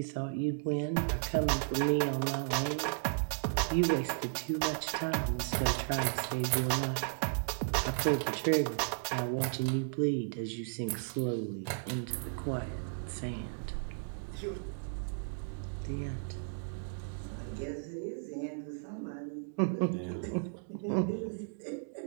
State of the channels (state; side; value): silent; left; digital silence